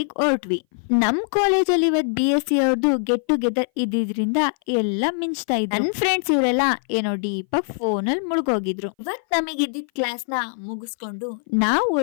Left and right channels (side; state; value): right; silent; 59 dB below the other